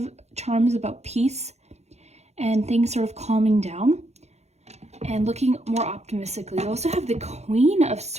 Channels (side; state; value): left; late; 0.32 ms